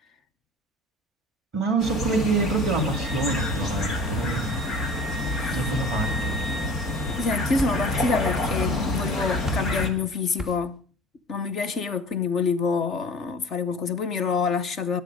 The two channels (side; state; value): both; normal; correlation 0.42